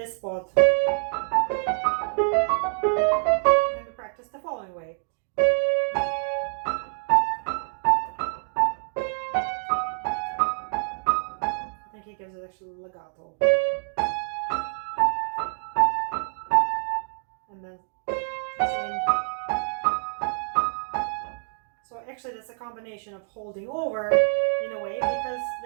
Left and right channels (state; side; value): silent; left; digital silence